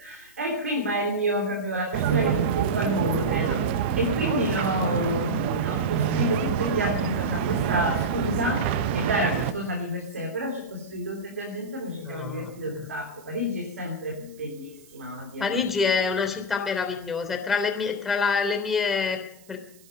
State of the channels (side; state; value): right; noise; hiss, 26 dB below the sound